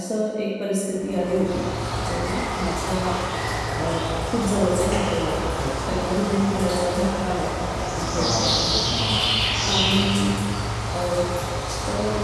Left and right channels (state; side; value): identical; both; correlation 1.00